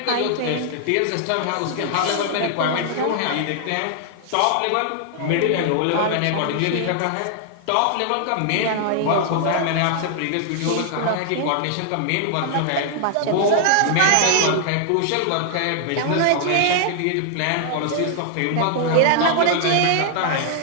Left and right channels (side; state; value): both; different; correlation 0.00